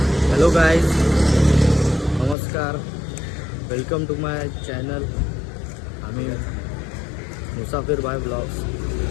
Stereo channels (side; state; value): right; drops out; at 2.4 s